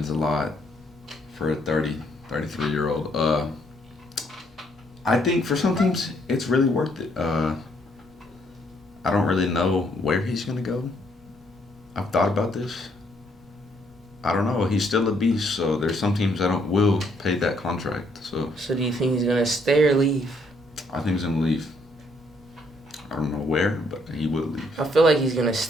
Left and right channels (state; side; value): normal; both; correlation 0.69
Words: a lot for a 33-year-old. I think for some teams, it's really worth it. I don't really know where he's going to go. I've thought about this. I don't know. He's still a beast, so there's some teams that will pay that contract. So do you think he's going to stay or leave? I think he's going to leave. I don't know where, but he will leave. I feel like he's going to